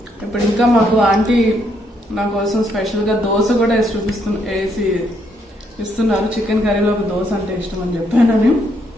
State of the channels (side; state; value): both; normal; correlation 0.73